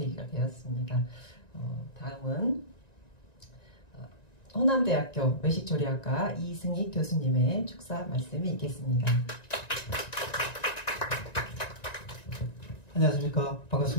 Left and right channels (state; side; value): late; right; 1.9 ms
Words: 되었습니다. 다음은 호남대학교 외식조리학과 이승희 교수님의 축사 말씀이 있겠습니다. 안녕하십니까.